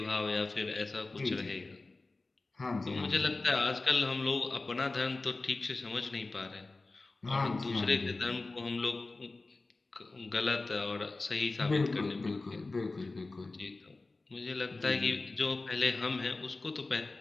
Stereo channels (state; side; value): quieter; right; 3.4 dB